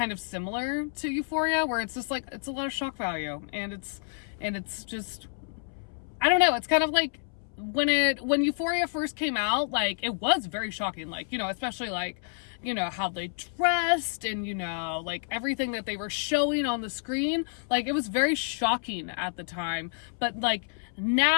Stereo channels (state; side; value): silent; right; 58 dB below the other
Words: of similar to Euphoria, where it's just like, it's a lot of shock value, and it's just, I don't know. It's kind of like when Euphoria first came out, like, it was very shocking, like, you know, especially like, you know, how they dressed and, you know, like everything that they were showing on the screen, like, it was very shocking at the time. But like